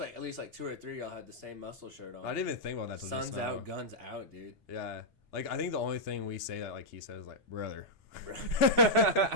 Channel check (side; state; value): both; normal; correlation -0.07